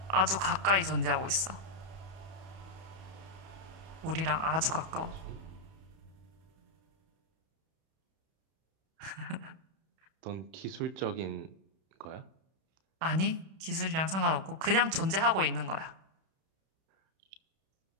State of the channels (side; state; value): left; late; 31 ms